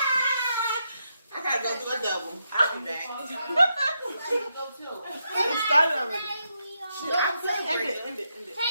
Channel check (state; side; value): inverted; both; correlation -0.82